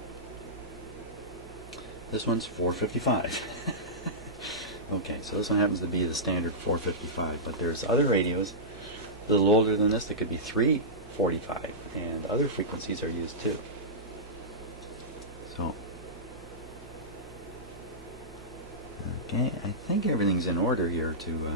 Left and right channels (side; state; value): both; normal; correlation -0.16